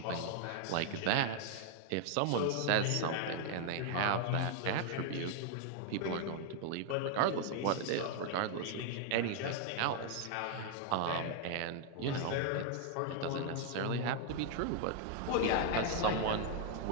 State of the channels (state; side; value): different; both; correlation 0.00